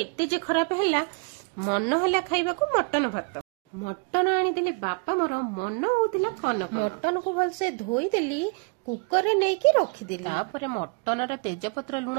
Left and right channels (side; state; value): left; quieter; 35.4 dB